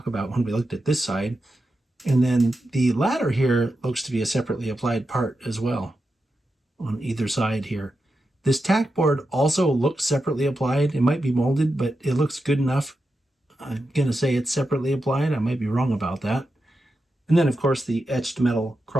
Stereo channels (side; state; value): both; normal; correlation 0.89